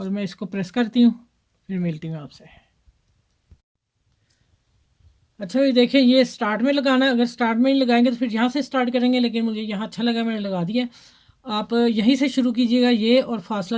मैं इसको प्रेस करती हूँ, फिर मिलती हूँ आपसे। अच्छा ये देखें, ये स्टार्ट में लगाना है, अगर स्टार्ट में ही लगाएंगे तो फिर यहाँ से स्टार्ट करेंगे, लेकिन मुझे यहाँ अच्छा लगा मैंने लगा दिया। आप यहीं से शुरू कीजिएगा ये, और फासला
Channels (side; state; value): both; identical; correlation 1.00